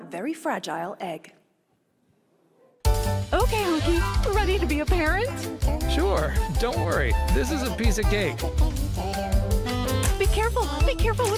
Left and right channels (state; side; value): identical; both; correlation 1.00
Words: very fragile egg. Okay, Honky, ready to be a parent? Sure, don't worry. This is a piece of cake. Be careful